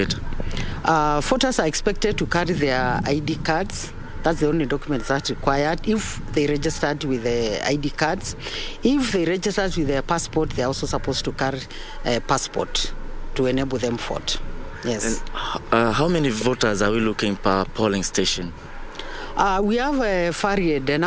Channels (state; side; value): identical; both; correlation 1.00